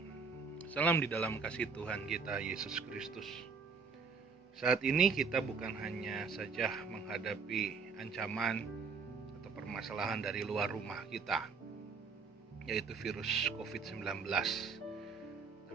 salam di dalam kasih Tuhan kita Yesus Kristus. Saat ini kita bukan hanya saja menghadapi ancaman atau permasalahan dari luar rumah kita, yaitu virus COVID-19.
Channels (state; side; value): quieter; left; 5.2 dB